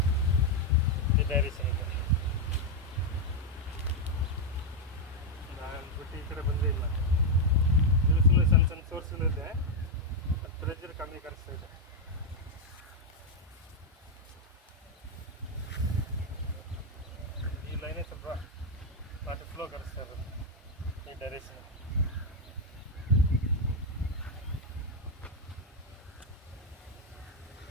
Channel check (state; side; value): normal; both; correlation 0.02